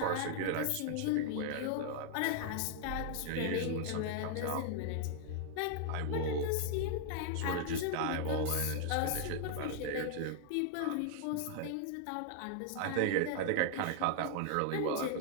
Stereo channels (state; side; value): different; both; correlation 0.00